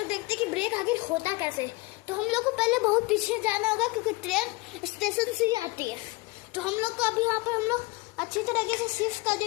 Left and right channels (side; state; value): right; quieter; 23.8 dB